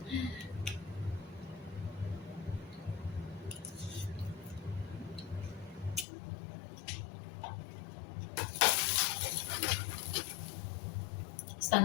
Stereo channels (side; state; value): right; drops out; at 6.1 s